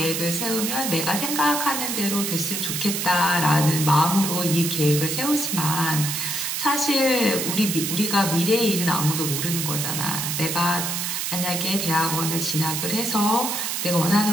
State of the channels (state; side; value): noise; right; hiss, 2 dB below the sound